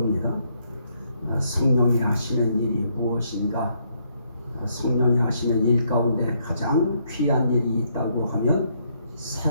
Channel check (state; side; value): inverted; both; correlation -0.73